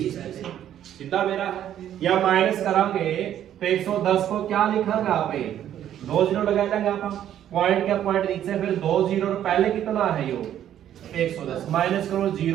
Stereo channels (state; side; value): quieter; left; 10.9 dB